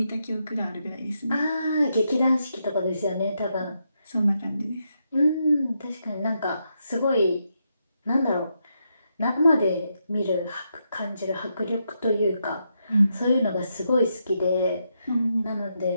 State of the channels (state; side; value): inverted; both; correlation -0.82